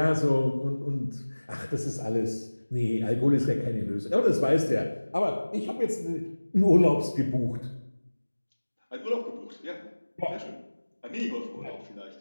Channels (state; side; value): inverted; both; correlation -1.00